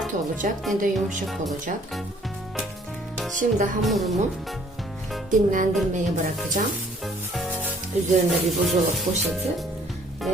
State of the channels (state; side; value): normal; both; correlation 0.59